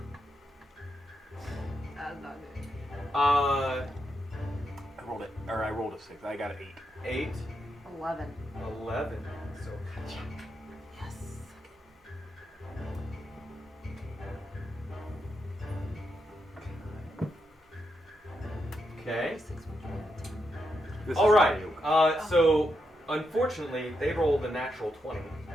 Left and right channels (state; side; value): normal; both; correlation 0.83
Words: That's not good. uh, I rolled a 6. I got an 8. 8, 11. 11. So, Yes. okay. 6 would be a 10. This All is right. Ronnie Oak. So, unfortunately, they rolled a natural 20.